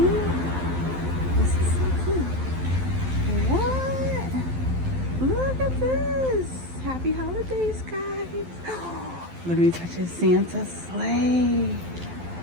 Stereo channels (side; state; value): left; late; 12 ms